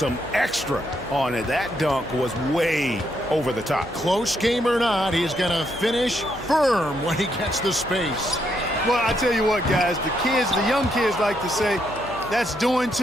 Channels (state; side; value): noise; left; hum, 19 dB below the sound